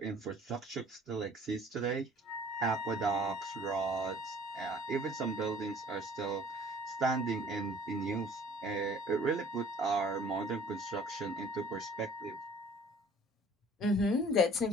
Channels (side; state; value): both; normal; correlation 0.52